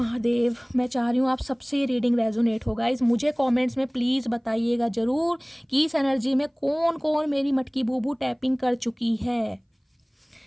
मैं चाह रही हूँ आप सबसे ये रीडिंग रेजोनेट होगा। इस मुझे कमेंट्स में प्लीज़ बताइएगा ज़रूर कि इस एनर्जी में कौन कौन मेरी मटकी बूबू टैपिंग कर चुकी है।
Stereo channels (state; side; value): identical; both; correlation 1.00